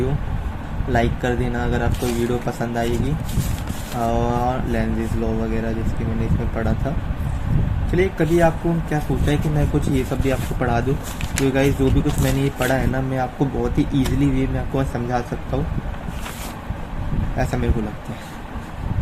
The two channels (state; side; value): identical; both; correlation 1.00